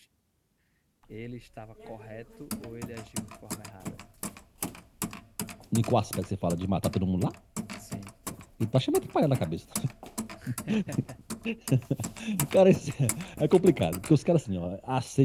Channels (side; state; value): both; identical; correlation 1.00